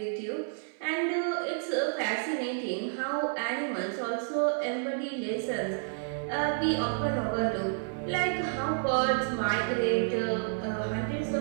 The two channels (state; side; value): silent; left; 58 dB below the other